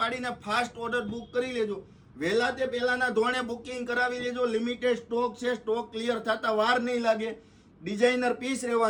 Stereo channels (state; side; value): identical; both; correlation 1.00